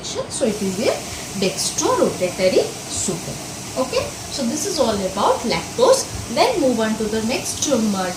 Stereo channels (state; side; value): identical; both; correlation 1.00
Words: So it is a dextrorotatory sugar. Okay, so this is all about lactose. Then move on to the next